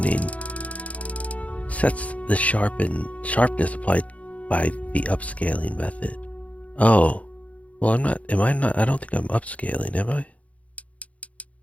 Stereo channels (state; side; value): late; right; 0.067 ms